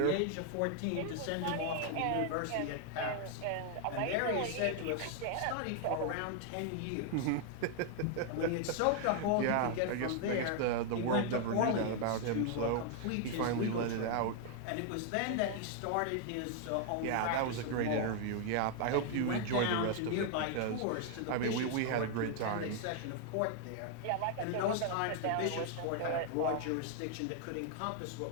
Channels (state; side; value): different; both; correlation 0.00